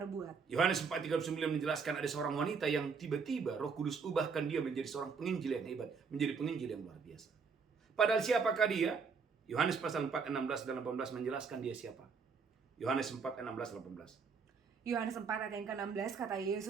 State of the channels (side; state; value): left; quieter; 5.5 dB